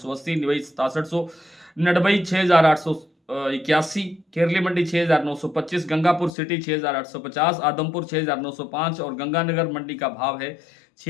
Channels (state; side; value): drops out; right; at 6.3 s